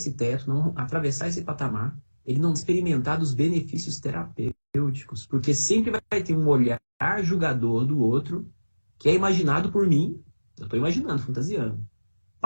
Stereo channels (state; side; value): inverted; both; correlation -1.00